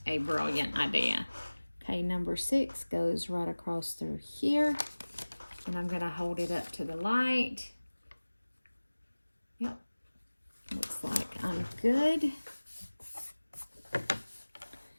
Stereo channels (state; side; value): inverted; both; correlation -1.00